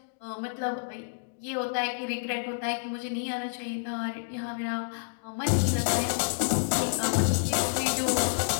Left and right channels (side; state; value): right; silent; digital silence